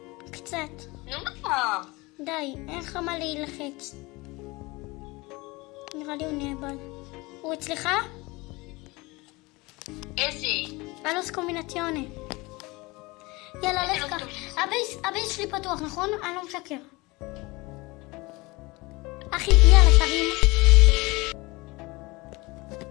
קצת. נו מה? די, אין לך מה להילחץ. נראה לי הוא נאבד. הוא אצלך? איזה? הלוס קומבינציונה. יאללה, לך קח. הבייס שלי פתוח, נכון? אני לא משקר. אחי, יאללה, תרים.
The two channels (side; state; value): right; quieter; 23.5 dB